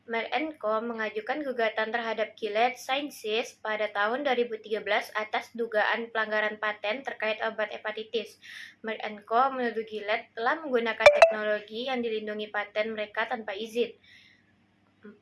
Merck & Co mengajukan gugatan terhadap Gilead Sciences pada tahun 2013 atas dugaan pelanggaran paten terkait obat hepatitis. Merck & Co menuduh Gilead telah menggunakan teknologi yang dilindungi paten mereka tanpa izin. 4.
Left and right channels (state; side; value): identical; both; correlation 1.00